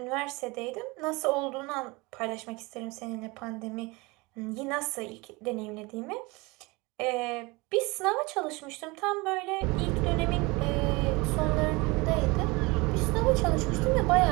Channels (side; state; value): left; quieter; 24.8 dB